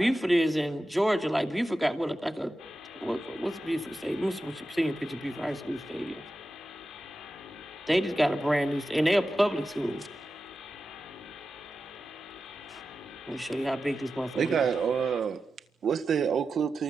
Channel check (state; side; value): normal; both; correlation 0.92